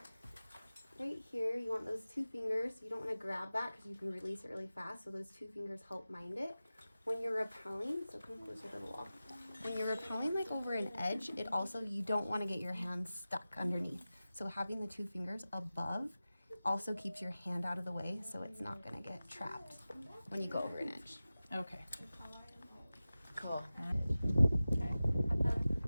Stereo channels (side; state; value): both; inverted; correlation -0.96